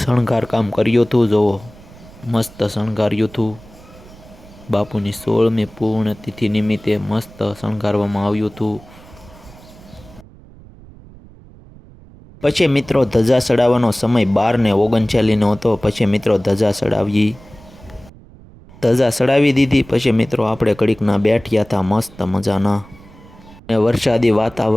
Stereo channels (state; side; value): noise; right; rumble, 22 dB below the sound